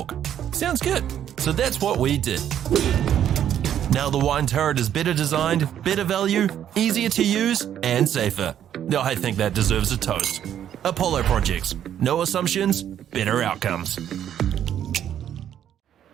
Sounds good. So that's what we did. Now the wine turret is better designed, better value, easier to use, and safer. I think that deserves a toast. Apollo Projects. No assumptions, better outcomes.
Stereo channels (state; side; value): quieter; left; 10.2 dB